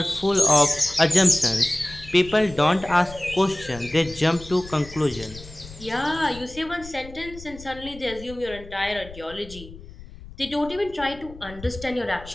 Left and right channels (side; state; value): left; noise; rumble, 17 dB below the sound